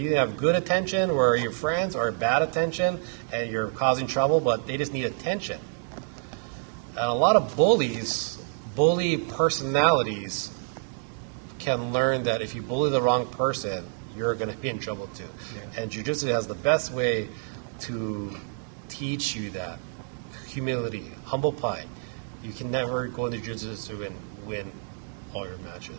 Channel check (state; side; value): silent; left; digital silence